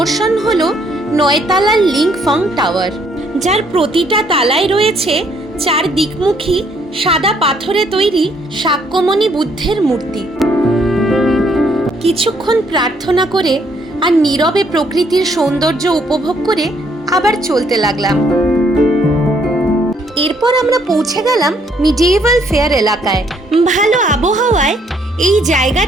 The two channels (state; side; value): normal; both; correlation 0.68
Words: হলো 9 তালার লিংফং টাওয়ার, যার প্রতিটা তালায় রয়েছে 4 দিকমুখী সাদা পাথরে তৈরি শাক্যমণি বুদ্ধের মূর্তি। কিছুক্ষণ প্রার্থনা করে আর নীরবে প্রকৃতির সৌন্দর্য উপভোগ করে আবার চলতে লাগলাম। এরপর আমরা পৌঁছে গেলাম মিডিয়েভাল ফেয়ার এলাকায়। ভালো আবহাওয়ায় এই